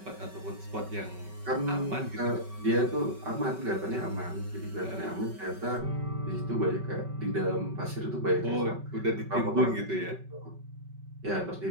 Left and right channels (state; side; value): late; left; 5.3 ms